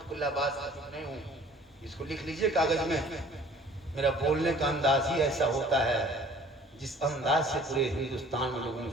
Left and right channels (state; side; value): normal; both; correlation 0.51